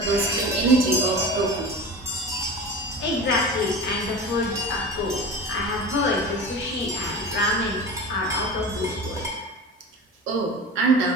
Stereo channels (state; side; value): normal; both; correlation 0.32